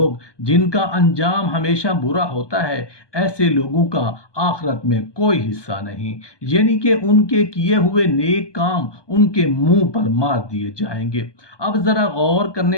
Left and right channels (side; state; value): right; late; 1.2 ms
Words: جن کا انجام ہمیشہ برا ہوتا ہے، ایسے لوگوں کا آخرت میں کوئی حصہ نہیں، یعنی کہ ان کے کیے ہوئے نیک کام ان کے منہ پر مار دیے جائیں گے۔ اب ذرا غور